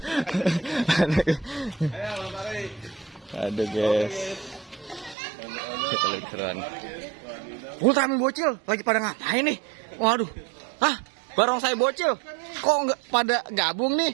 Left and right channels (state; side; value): drops out; left; at 5.2 s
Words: Aduh, guys. Kita lihat keseruan. Ultraman bocil lagi pada ngapain nih? Waduh. Barongsai bocil. Kok nggak pada gabung nih?